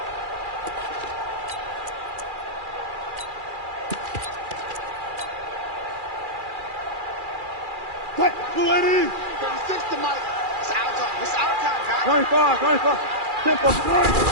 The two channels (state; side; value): late; left; 2.4 ms